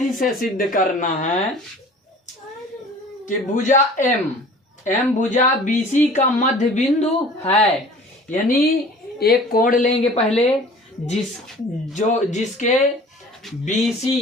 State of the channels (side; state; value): both; normal; correlation 0.46